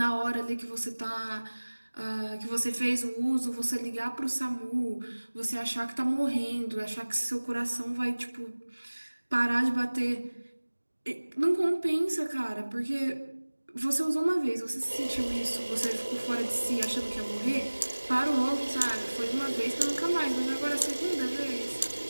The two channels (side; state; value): both; inverted; correlation -1.00